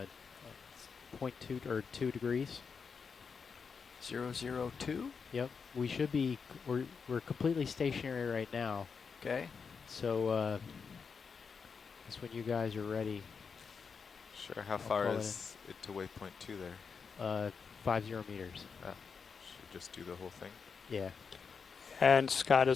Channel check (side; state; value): right; quieter; 5.7 dB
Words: 0.2 or 2 degrees. 002. Yep. We should be. We're completely stationary right now. Okay. So I guess when you guys are ready. Sure. How I'll far call it is it to waypoint 2 there? 50 meters. Should we just do the whole thing? Yeah. And Scott